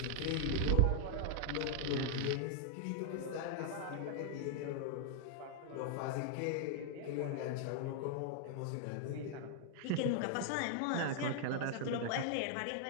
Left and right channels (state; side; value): different; both; correlation -0.01